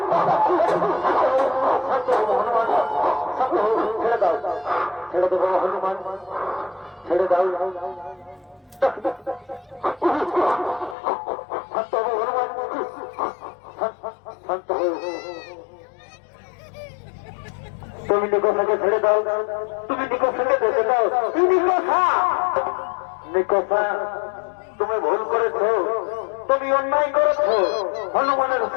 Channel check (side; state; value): right; drops out; at 11.0 s